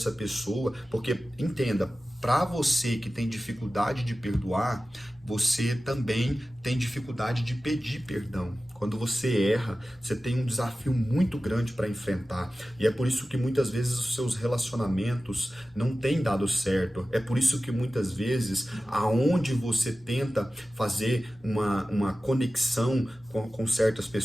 pessoa, porque entenda, para você que tem dificuldade de perdoar, você também tem dificuldade de pedir perdão. Quando você erra, você tem um desafio muito grande para enfrentar. E é por isso que muitas vezes os seus relacionamentos não têm dado certo. É por isso que muitas vezes, aonde você tenta fazer uma conexão com certas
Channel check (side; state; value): both; normal; correlation 0.95